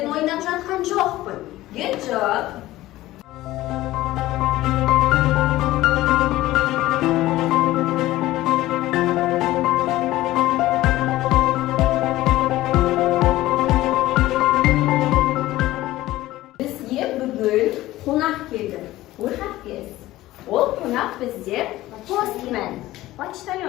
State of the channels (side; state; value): right; quieter; 16.4 dB